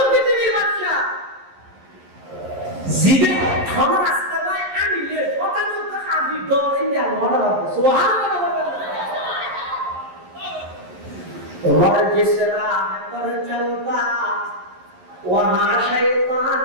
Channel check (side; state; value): left; late; 11 ms